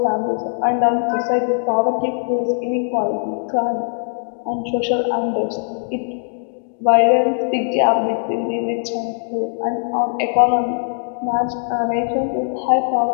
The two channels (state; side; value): silent; right; 66 dB below the other